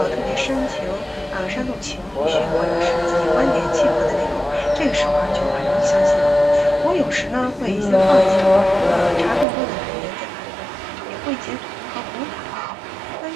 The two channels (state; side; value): drops out; left; at 9.5 s